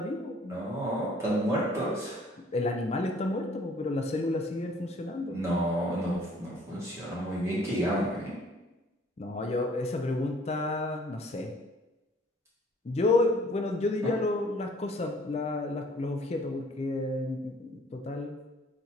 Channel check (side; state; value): both; normal; correlation 0.57